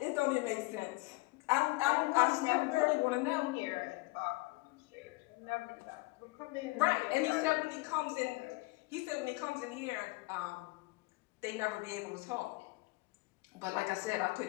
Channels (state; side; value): quieter; right; 23.4 dB